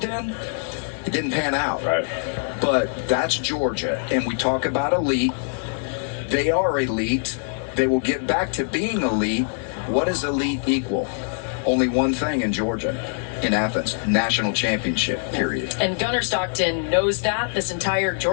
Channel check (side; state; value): right; silent; digital silence